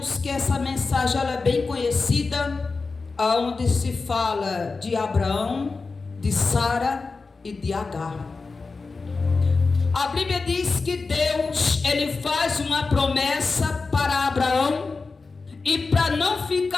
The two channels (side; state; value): right; quieter; 4.1 dB